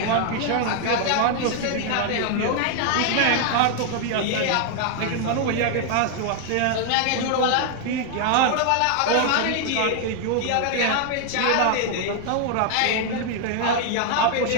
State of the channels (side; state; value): both; different; correlation 0.00